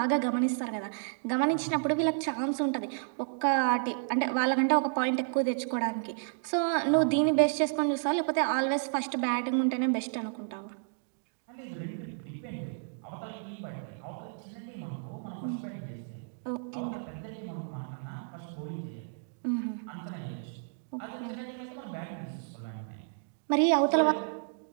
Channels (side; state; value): left; silent; digital silence